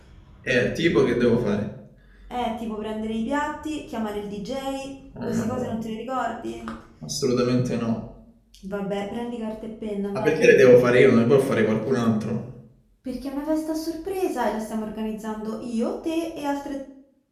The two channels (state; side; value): identical; both; correlation 1.00